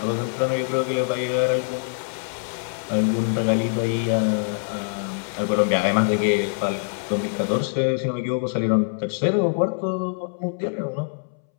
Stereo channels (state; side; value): silent; right; 63 dB below the other